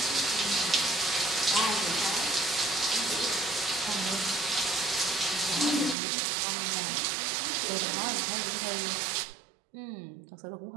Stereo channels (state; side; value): drops out; left; at 6.0 s